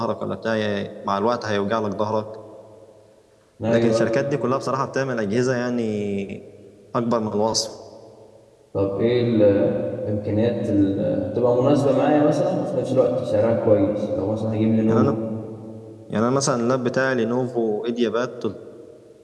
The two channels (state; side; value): identical; both; correlation 1.00